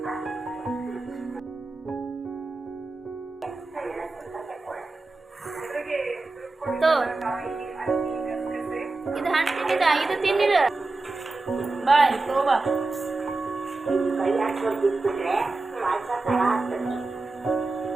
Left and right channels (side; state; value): left; quieter; 3.4 dB